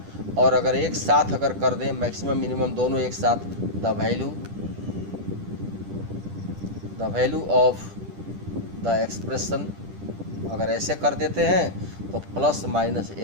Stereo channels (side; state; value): left; late; 10 ms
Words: और अगर एक साथ अगर कर दें मैक्सिमम मिनिमम दोनों एक साथ, the value of the expression अगर ऐसे कर देते हैं तो प्लस माइनस